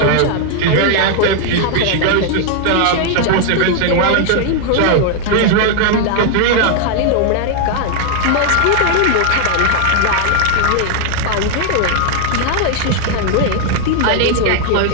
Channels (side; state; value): both; different; correlation 0.00